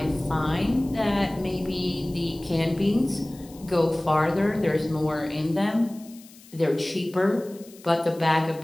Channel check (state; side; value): noise; left; hiss, 23 dB below the sound